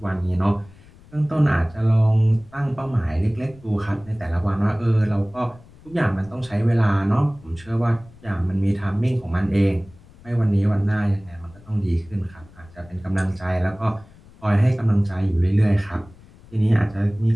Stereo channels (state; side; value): noise; left; rumble, 24 dB below the sound